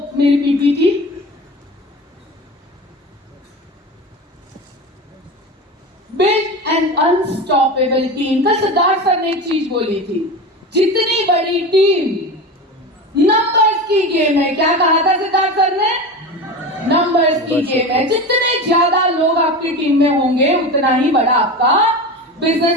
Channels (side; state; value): both; normal; correlation 0.27